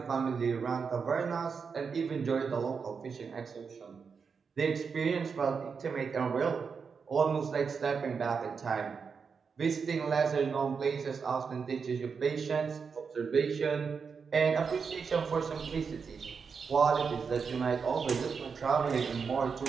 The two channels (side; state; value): left; quieter; 5.7 dB